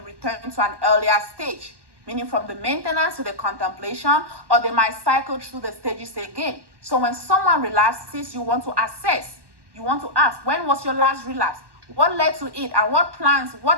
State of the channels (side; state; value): left; late; 1.1 ms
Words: to an earlier stage, meaning from the maintenance to the contemplation, or they might cycle through the stages again. So when someone relapses, you want to assess, you want to ask, when was your last relapse? What led to it and what